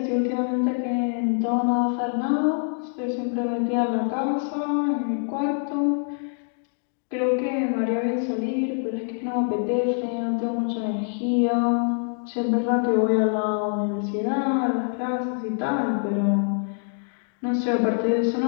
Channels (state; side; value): silent; right; 62 dB below the other